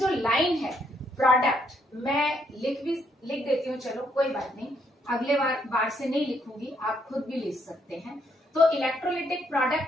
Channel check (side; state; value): both; normal; correlation 0.72